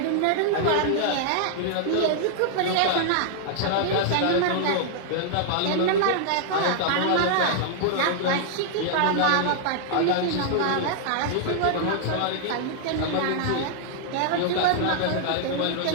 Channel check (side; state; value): both; different; correlation -0.01